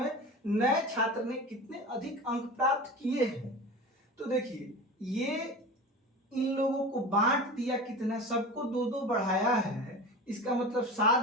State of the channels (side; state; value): both; normal; correlation 0.32